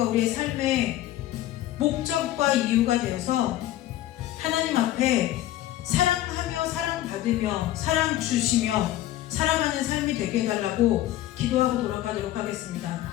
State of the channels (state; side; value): quieter; right; 14.1 dB